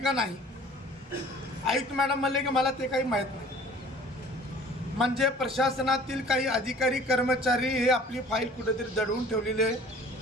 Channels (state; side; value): normal; both; correlation 0.49